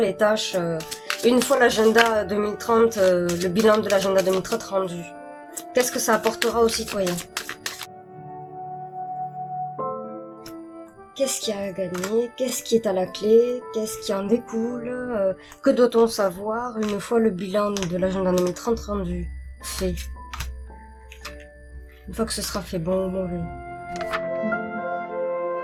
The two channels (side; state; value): both; identical; correlation 1.00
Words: tâches, une fois l'agenda 2030, le bilan de l'agenda 2030 rendu? Qu'est-ce que ça apportera aux citoyens? Qu'est-ce qu'il y a à gagner? Qu'est-ce qui est à la clé? Qu'est-ce qui en découle? Que doit-on savoir une fois le bilan de l'agenda 2030 rendu? Fait. Une fois que ce sera fait, bon ou mauvais.